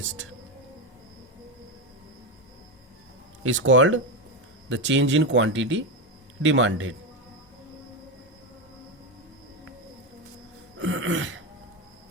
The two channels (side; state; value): both; normal; correlation 0.12